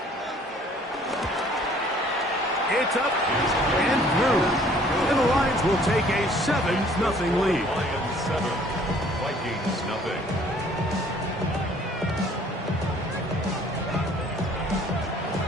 It's up and through. And the Lions will take a 7-0 lead. Lions 7, Vikings nothing.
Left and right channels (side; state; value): both; normal; correlation 0.57